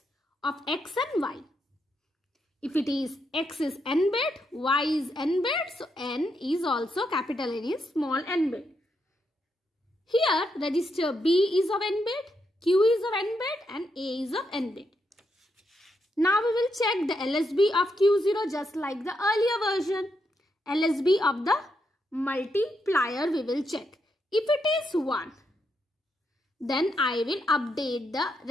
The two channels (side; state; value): both; normal; correlation 0.81